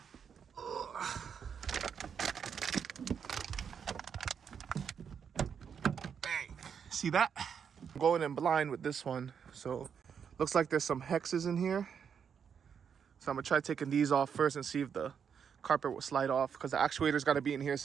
Bang. See that? I'm going in blind with this one. So looks like there's some hexes in here. So I'm gonna try taking these off first and see if the carpet will slide off, because the actuator's gotta be in here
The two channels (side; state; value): left; quieter; 7.2 dB